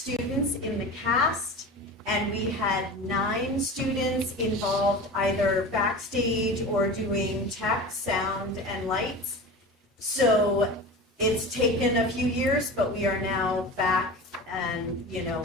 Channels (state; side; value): normal; both; correlation 0.32